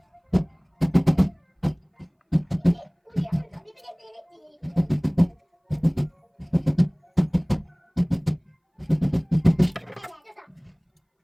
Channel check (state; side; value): identical; both; correlation 1.00